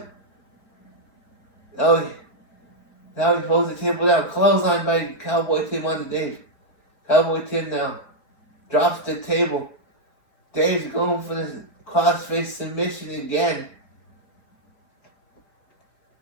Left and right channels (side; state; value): right; late; 4.5 ms